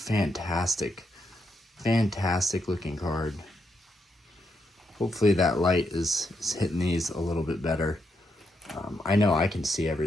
looking card. Hopefully that light is hitting these a little bit better. I know I can see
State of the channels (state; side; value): normal; both; correlation 0.81